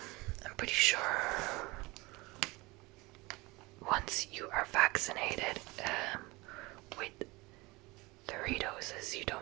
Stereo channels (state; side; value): quieter; left; 23.2 dB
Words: pretty sure once you are vaccinated with 3 doses, you